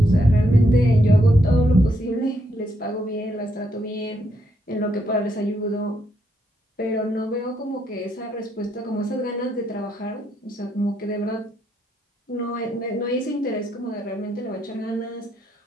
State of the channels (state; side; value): normal; both; correlation 0.77